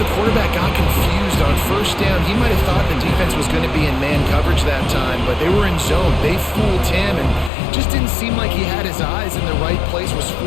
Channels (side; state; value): right; drops out; at 7.5 s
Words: quarterback got confused on first down. He might have thought the defense was going to be in man coverage that time, but they were in zone. They fooled him and just didn't seem like he had his eyes in the right place, was